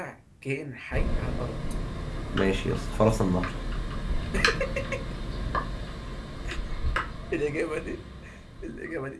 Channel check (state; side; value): identical; both; correlation 1.00